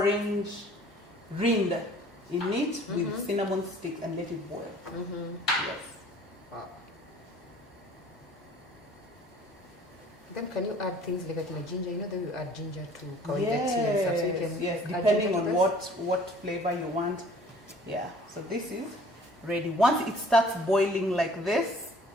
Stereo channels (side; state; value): both; normal; correlation 0.52